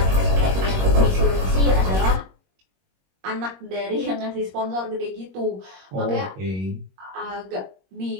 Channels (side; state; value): left; late; 21 ms